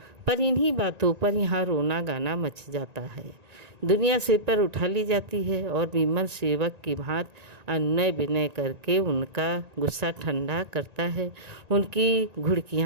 पर इन्हीं बातों पर यहाँ रोना गाना मच जाता है। दुनिया सिर पर उठा ली जाती है और विमल सेवक की भांति अनुनय विनय करके उनका गुस्सा ठंडा करता है, उनकी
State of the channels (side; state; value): left; late; 1.9 ms